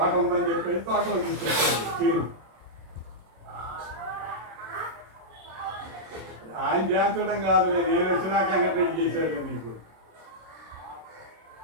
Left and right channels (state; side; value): late; left; 26 ms